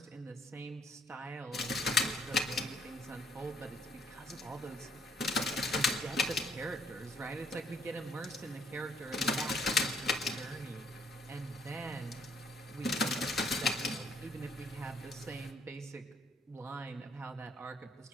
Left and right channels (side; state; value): both; normal; correlation 0.66